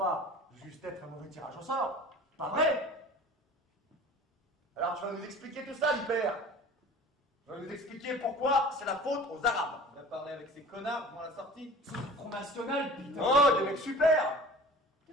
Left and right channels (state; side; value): normal; both; correlation 0.42